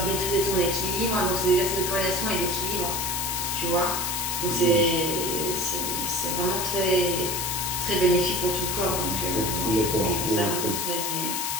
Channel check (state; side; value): noise; left; hiss, 1 dB below the sound